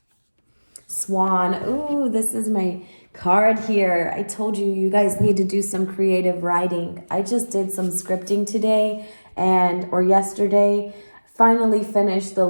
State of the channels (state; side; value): inverted; both; correlation -1.00